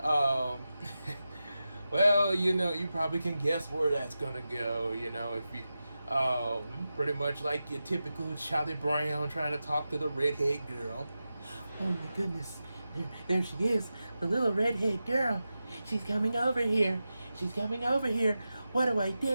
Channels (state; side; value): inverted; both; correlation -0.92